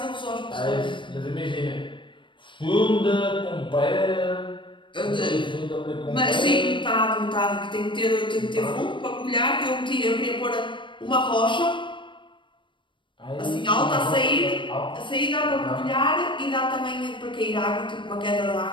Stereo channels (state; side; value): late; right; 0.24 ms